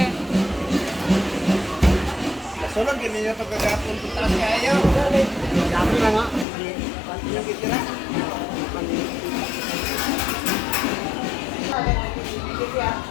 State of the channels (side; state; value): right; drops out; at 6.5 s